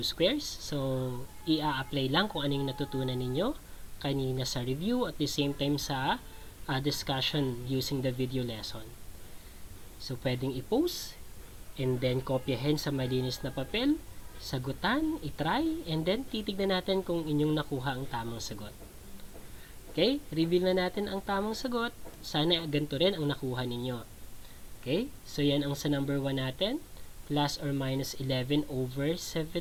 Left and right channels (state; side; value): identical; both; correlation 1.00